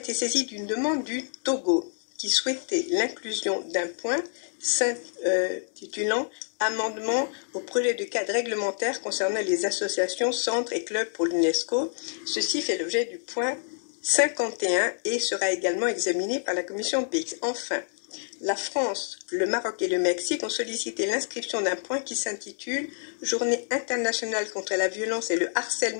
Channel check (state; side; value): silent; right; digital silence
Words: saisis d'une demande du Togo qui souhaitait l'inclusion d'un point s'intitulant « Amendement au projet de cadre réglementaire concernant les associations, centres et clubs pour l'UNESCO ». Ceci fait l'objet du point 51 et sera également examiné par la commission PX. Enfin, la France, le Maroc et le Mexique ont sollicité l'inscription d'un point qui s'intitule « Journée internationale contre la violence et le